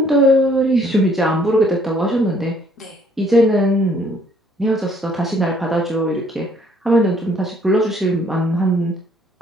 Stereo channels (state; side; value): normal; both; correlation 0.63